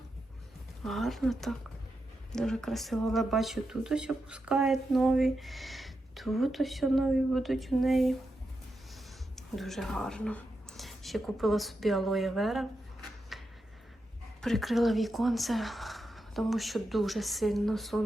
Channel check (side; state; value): both; normal; correlation 0.87